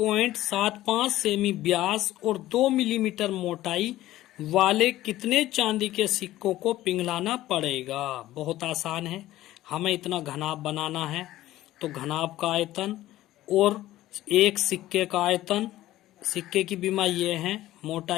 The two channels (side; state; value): right; quieter; 15.1 dB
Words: सेमी व्यास और 2 मिलीमीटर मोटाई वाले कितने चांदी के सिक्कों को पिघलाना पड़ेगा। बहुत आसान है। हमें इतना घनाभ बनाना है तो घनाभ का आयतन और एक सिक्के का आयतन, सिक्के की बीमा ये है,